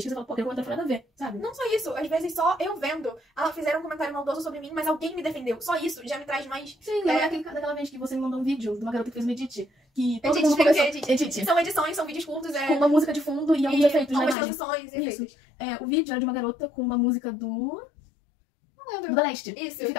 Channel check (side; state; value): right; drops out; at 14.4 s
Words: que você fala, pô, aquele comentário não foi nada a ver, sabe? Não só isso, às vezes só eu vendo, fizeram um comentário maldoso sobre mim, mas alguém me defendeu. Só isso já me traz mais... Sim, daquela vez que você me mandou um vídeo de uma garota que fez um edit, que todo Edit, mundo começou... edit. São edições, são vídeos curtos, com uma música de fundo e alguns efeitos na algumas imagem. transições e Isso. efeitos. O vídeo era de uma garota com uma música Não lembro. do Da Leste. Isso. E